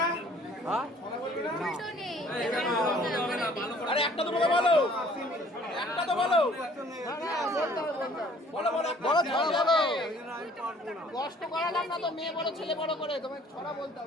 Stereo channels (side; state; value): both; normal; correlation 0.56